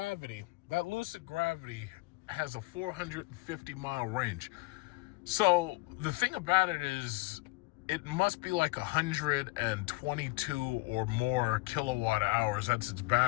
has a 450-mile range. So the thing about it is, it must be like 122 or more kilowatt hours. That's its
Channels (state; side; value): quieter; right; 24.0 dB